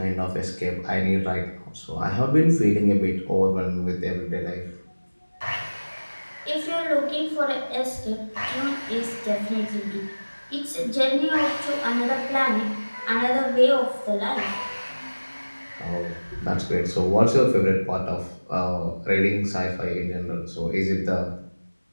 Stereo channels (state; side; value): inverted; both; correlation -1.00